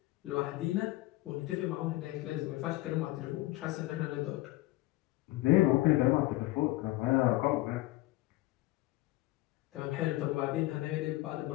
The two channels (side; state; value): right; quieter; 18.5 dB